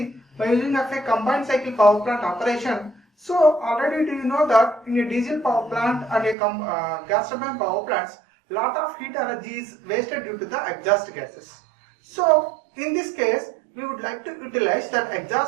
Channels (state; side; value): drops out; left; at 6.4 s